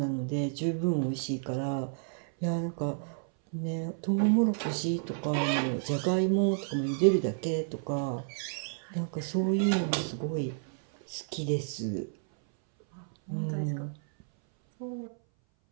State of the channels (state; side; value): silent; left; 57 dB below the other